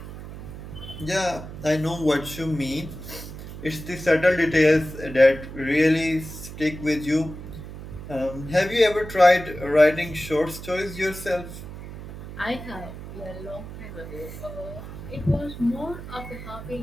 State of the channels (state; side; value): noise; right; hum, 11 dB below the sound